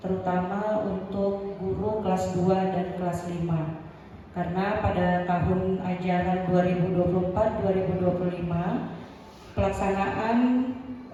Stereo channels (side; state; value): both; identical; correlation 1.00